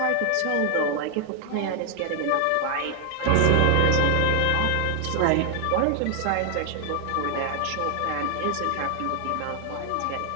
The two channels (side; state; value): both; different; correlation 0.00